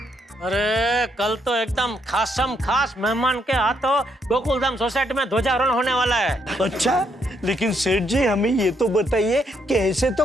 अरे कल तो एकदम खास मेहमान के हाथों गोकुलधाम सोसाइटी में ध्वजारोहण होने वाला है। अच्छा, लेकिन सेठ जी हमें ये तो बताइए कि ऐसे तो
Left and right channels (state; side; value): normal; both; correlation 0.74